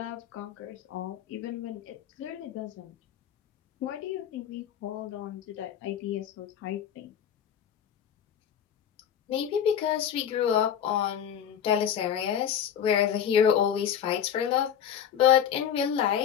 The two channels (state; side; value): quieter; right; 8.9 dB